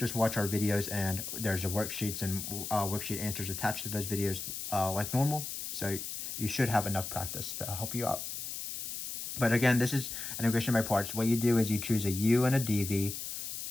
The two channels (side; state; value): left; noise; hiss, 6 dB below the sound